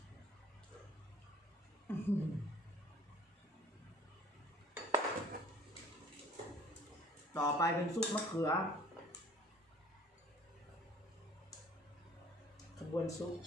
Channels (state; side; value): normal; both; correlation 0.52